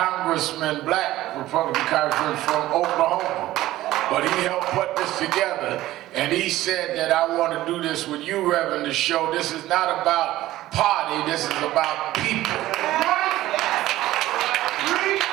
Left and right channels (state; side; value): quieter; left; 15.6 dB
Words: black Republican congressman from Oklahoma. But he helped put this together, and he said that I want to do this with you, Reverend, to show this is not about party, this is about people.